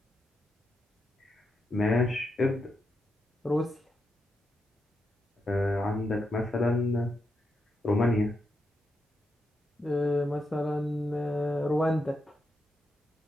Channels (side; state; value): both; normal; correlation 0.84